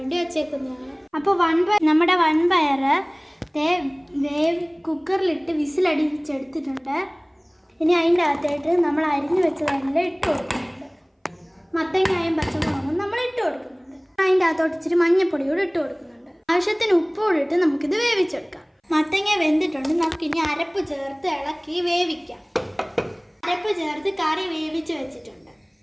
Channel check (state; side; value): identical; both; correlation 1.00